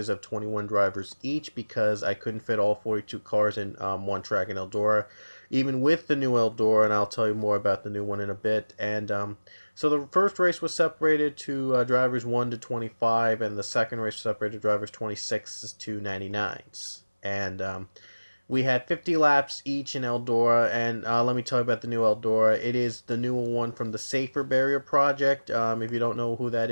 of 21 drivers each because I couldn't fit all 42 cars in one track in Eldora, even with the new Eldora, and I'll tell you more about the new one in a bit. And so the first race was separated to drivers 1 to 25, and the second race was separated to drivers 26 to 99s. And we had 50 laps each in Eldora, and let me tell you about the new Eldora. It is the new one from the Safer Barrier Project. If you don't know who that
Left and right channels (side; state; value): both; inverted; correlation -1.00